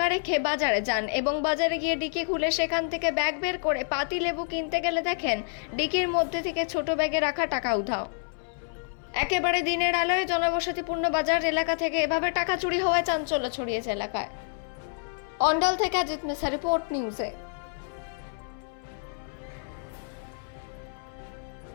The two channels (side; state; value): right; silent; 59 dB below the other